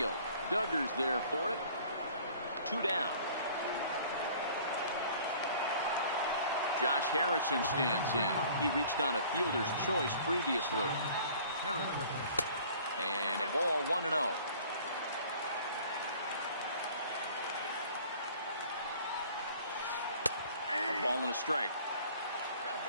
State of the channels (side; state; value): both; inverted; correlation -0.51